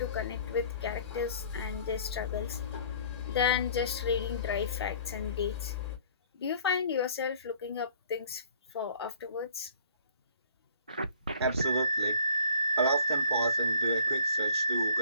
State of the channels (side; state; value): both; inverted; correlation -0.54